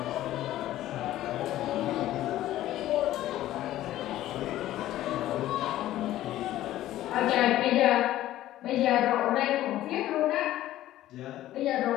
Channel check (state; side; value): quieter; right; 14.1 dB